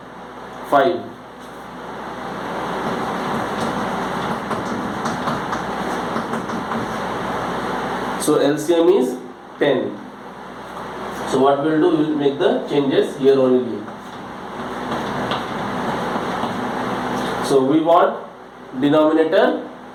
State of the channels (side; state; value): both; identical; correlation 1.00